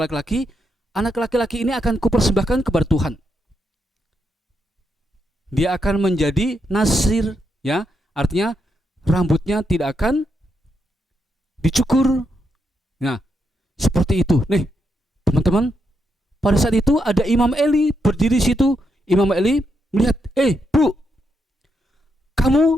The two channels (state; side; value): normal; both; correlation 0.81